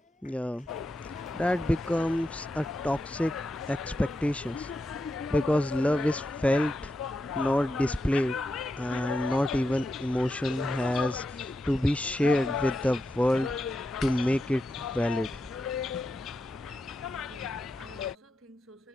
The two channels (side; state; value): both; normal; correlation 0.87